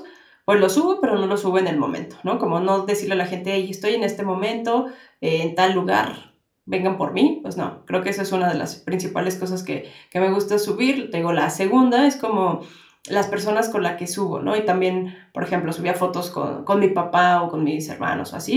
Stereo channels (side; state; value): both; identical; correlation 1.00